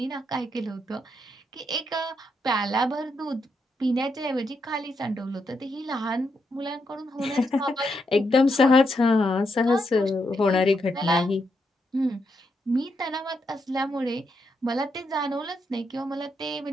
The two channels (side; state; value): both; normal; correlation 0.81